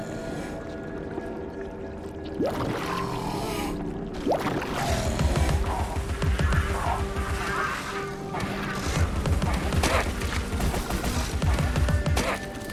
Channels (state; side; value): identical; both; correlation 1.00